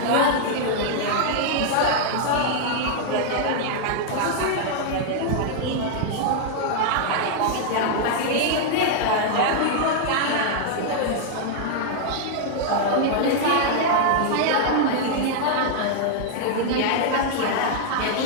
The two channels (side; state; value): both; different; correlation -0.01